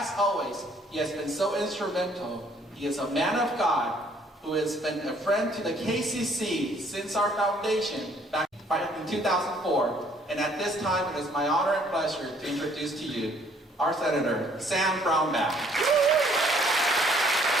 always, he has been so instrumental. He is a man of God who has been a friend to the KCC since our foundation back in 2004. And at this time, it is my honor and pleasure to introduce to you our Senator, Sam Brownback.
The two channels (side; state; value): both; normal; correlation 0.62